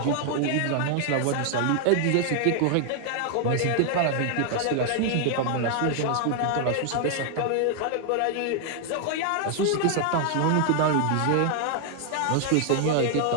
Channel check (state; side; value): different; both; correlation 0.00